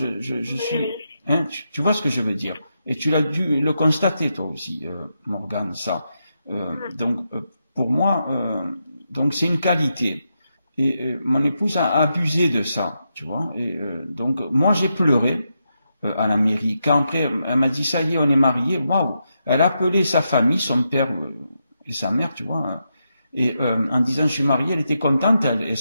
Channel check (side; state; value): both; inverted; correlation -0.84